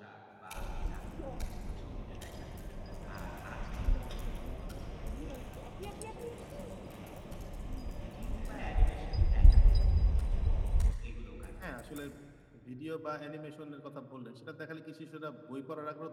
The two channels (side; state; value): both; identical; correlation 1.00